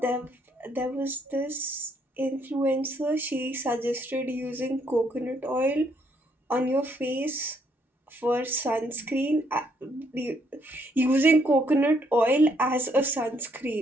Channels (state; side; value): normal; both; correlation 0.71